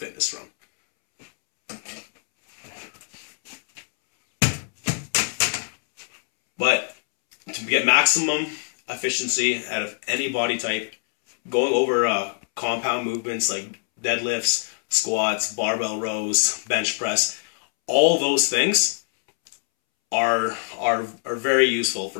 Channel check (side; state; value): right; silent; 63 dB below the other